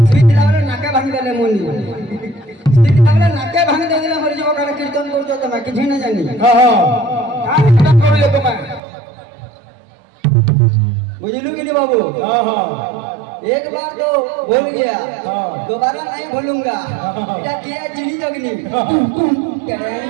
स्वीट लावले नाके भांग देले मुनी। स्वीट लावले नाके भांग देले मर जो का कीर्तन करतो तो मैं किछि ना जानी। का कीर्तन करू तो मैं बुझलू कि नहीं बाबू? एक बार तो भूल गया, दोबारा नहीं भूलूंगा। क्या किया चिड़ी जगनी।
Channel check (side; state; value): left; drops out; at 8.8 s